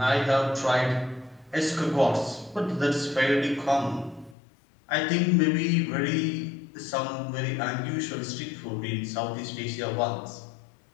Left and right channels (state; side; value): drops out; right; at 4.4 s